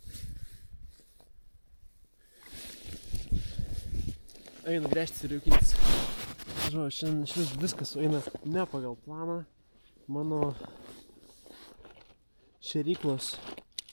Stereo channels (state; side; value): inverted; both; correlation -1.00